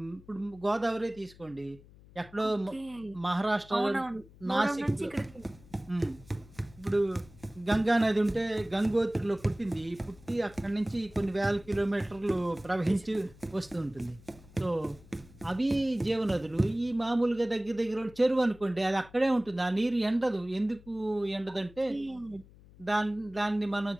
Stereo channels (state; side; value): noise; left; hum, 23 dB below the sound